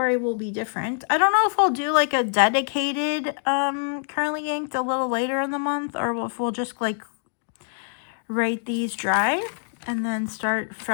will be different. I don't know if I'll do like a dedicated currently inked a little later in the month, or if we'll just like write these dry and then start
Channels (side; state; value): right; silent; digital silence